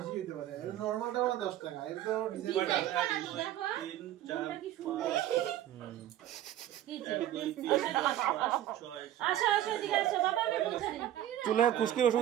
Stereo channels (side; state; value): left; quieter; 12.4 dB